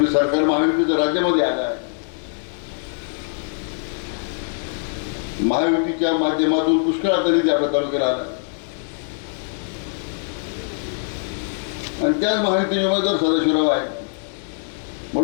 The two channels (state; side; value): silent; right; digital silence